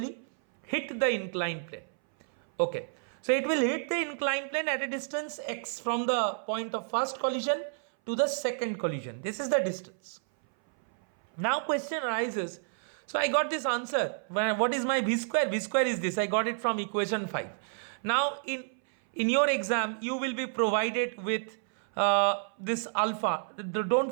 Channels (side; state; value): left; silent; 58 dB below the other